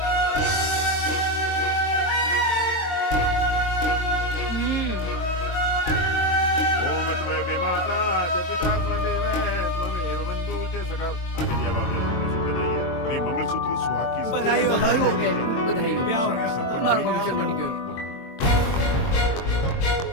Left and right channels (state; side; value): late; right; 22 ms